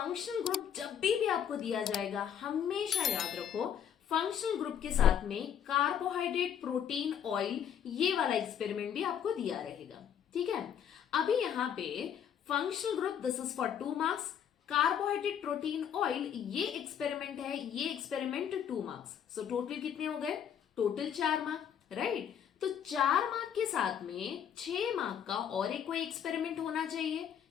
ग्रुप जब भी आपको दिया जाएगा हमेशा याद रखो फंक्शनल ग्रुप के साथ में कार्बोहाइड्रेट प्रोटीन ऑयल ये वाला एक्सपेरिमेंट भी आपको दिया रहेगा। ठीक है, अभी यहाँ पे functional group this is for 2 marks, carbohydrate protein oil ये एक्सपेरिमेंट है, ये एक्सपेरिमेंट 2 मार्क्स। सो टोटल कितने हो गए? Total 4 mark, right. तो 4 मार्क के साथ में 6 मार्क का और एक कोई एक्सपेरिमेंट होना चाहिए।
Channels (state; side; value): quieter; right; 8.8 dB